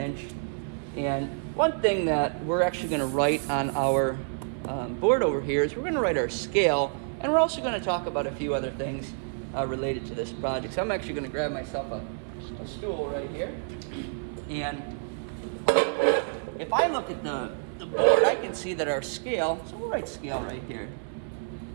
And one thing that we're actually going to write on our board over here is we're going to write our scale, and we're also going to talk about a few other things related to this project. So I'm actually going to grab myself a stool right here, and if I look at the board, I can see that our scale, so we'll write scale right here.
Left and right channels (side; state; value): left; silent; 59 dB below the other